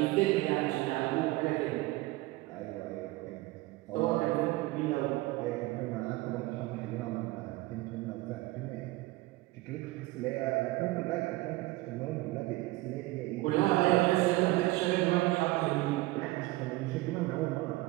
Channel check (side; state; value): left; quieter; 19.7 dB